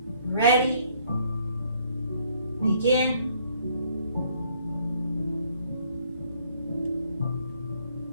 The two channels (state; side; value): inverted; both; correlation -0.64